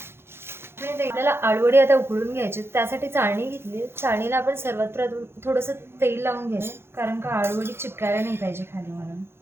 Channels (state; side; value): late; left; 0.12 ms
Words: आपल्याला आळूवडी आता उकळून घ्यायची, त्यासाठी चाळणी घेतली. चाळणीला आपण सर्वात प्रथम थोडंसं तेल लावून घ्यायचं, कारण का आळूवडी चिपकायला नाही पाहिजे खाली म्हणून.